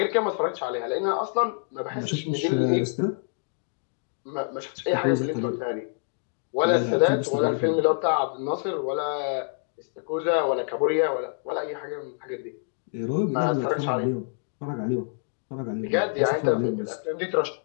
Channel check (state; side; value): silent; right; digital silence